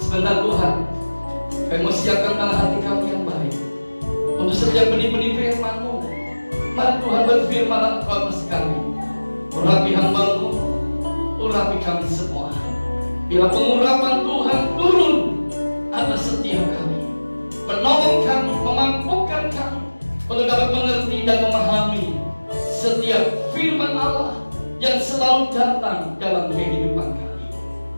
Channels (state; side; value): inverted; both; correlation -1.00